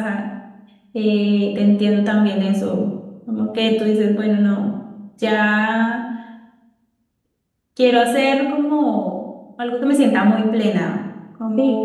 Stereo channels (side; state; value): both; identical; correlation 1.00